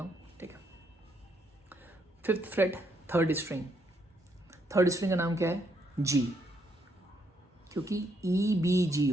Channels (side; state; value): both; normal; correlation 0.74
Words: हूँ। ठीक है, fifth freight third string, third string का नाम क्या है? जी, क्योंकि EBG